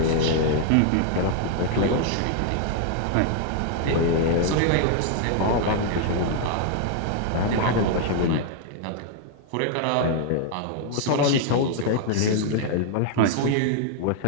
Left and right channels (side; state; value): both; different; correlation 0.00